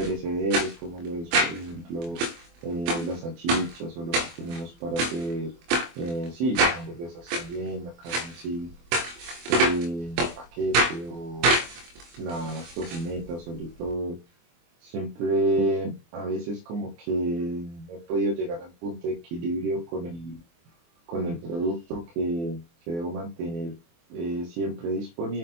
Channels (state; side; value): late; left; 24 ms